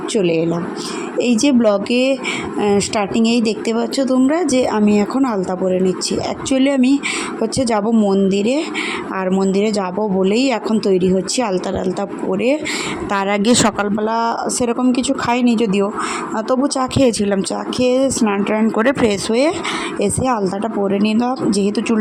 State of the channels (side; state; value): both; identical; correlation 1.00